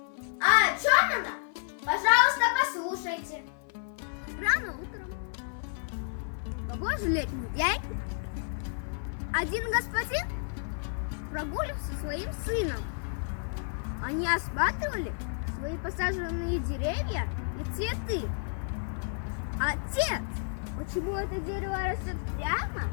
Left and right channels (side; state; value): right; silent; 57 dB below the other